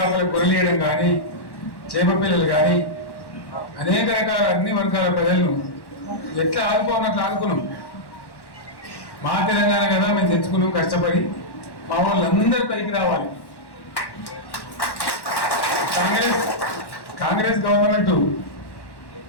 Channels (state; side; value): late; right; 1.1 ms